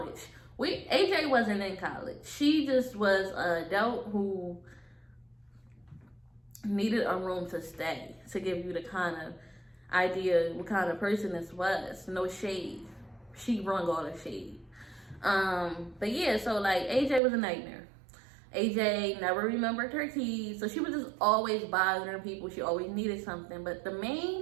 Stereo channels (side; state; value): left; drops out; at 17.2 s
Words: AJ wasn't in college. She just was an adult who needed a room to stay, to give you the kind of idea what kind of person this was. No shade. She brung all the shade. But yeah, so like, AJ was a nightmare. AJ never remembered her keys, so she was just always bothering people. She always needed something. But the